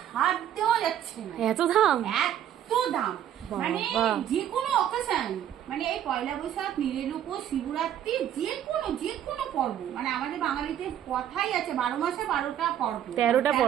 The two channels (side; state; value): left; quieter; 10.6 dB